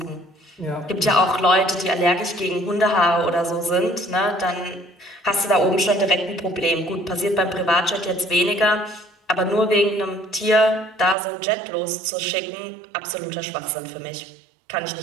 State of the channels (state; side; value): drops out; left; at 11.2 s